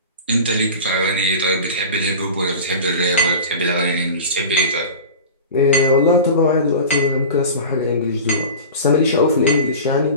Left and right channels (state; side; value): inverted; both; correlation -0.34